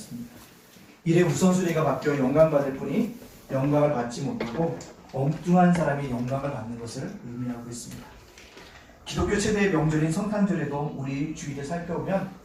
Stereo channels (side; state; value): both; identical; correlation 1.00